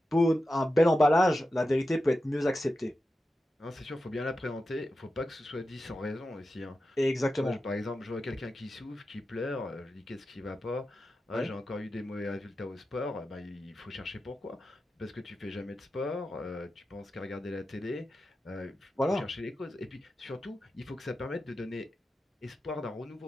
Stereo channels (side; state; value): both; normal; correlation 0.91